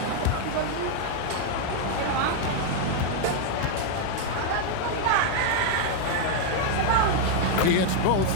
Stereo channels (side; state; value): both; different; correlation 0.00